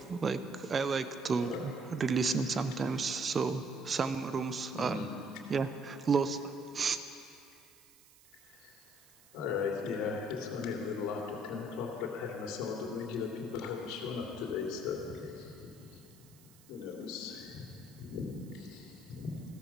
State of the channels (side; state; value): right; noise; hiss, 25 dB below the sound